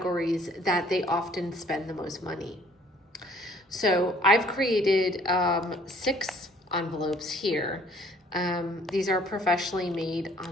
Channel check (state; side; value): normal; both; correlation 0.58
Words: that they often spend the most money. So I've created 6 envelopes here. These are professionally made